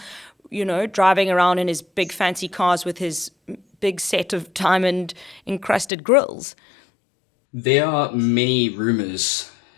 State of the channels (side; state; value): right; drops out; at 5.9 s